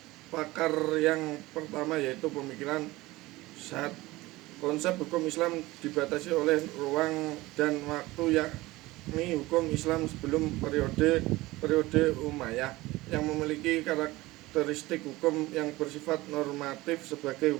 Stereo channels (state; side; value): quieter; left; 19.6 dB